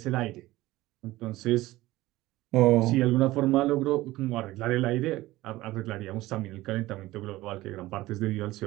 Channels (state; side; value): quieter; left; 17.7 dB